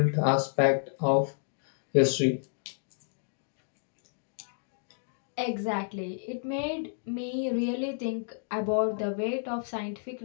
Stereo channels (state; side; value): silent; right; digital silence